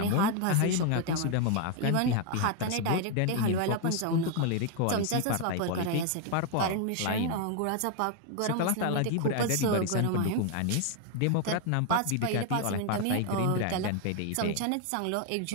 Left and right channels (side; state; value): both; different; correlation 0.01